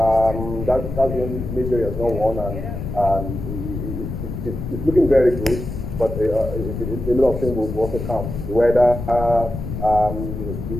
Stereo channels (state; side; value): noise; left; rumble, 6 dB below the sound